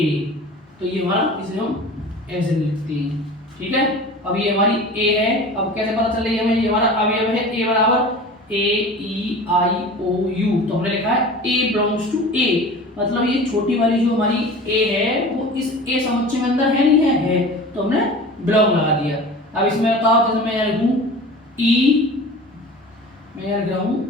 तो ये हमारा, इसे हम ऐसे लिखते हैं। ठीक है, अब ये हमारी ए है। अब कैसे पता चल रही है हमें? ये हमारा अवयव है ए बराबर ए ई आई ओ यू, तो हमने लिखा है ए बिलोंग्स टू ए, मतलब ये छोटी वाली जो हमारी ए है वो इस ए समुच्चय में अंदर है नहीं है, तो हमने बिलोंग लगा दिया। अब इसमें बताओ, जैसे मैं यहाँ लिखूं ई, मैं यहाँ लिख रहा हूं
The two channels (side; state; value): both; normal; correlation 0.38